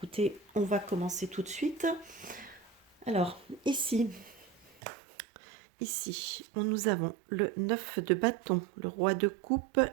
on va commencer tout de suite. Alors, ici, nous avons le 9 de bâton, le roi de coupe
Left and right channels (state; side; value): drops out; left; at 4.8 s